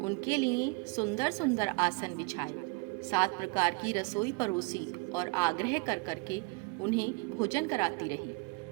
लिए सुंदर सुंदर आसन बिछाए, 7 प्रकार की रसोई परोसी और आग्रह कर करके उन्हें भोजन कराती रही।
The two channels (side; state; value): left; quieter; 26.6 dB